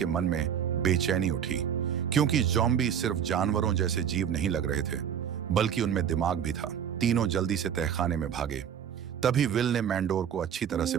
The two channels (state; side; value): quieter; left; 8.7 dB